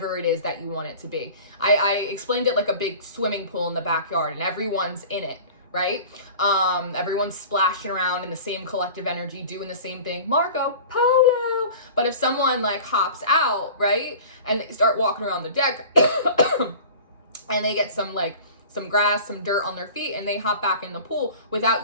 it is that you want it to be. I explained it like a big swimming pool in the backyard, and everyone's in it, right? Everyone's splashing around in the same collective energy, doing the same thing, Marco Polo. But if someone like hops out, right, and they start walking around the deck and they get some grass, some dirt on their feet, and they hop back in the pool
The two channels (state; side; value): inverted; both; correlation -0.40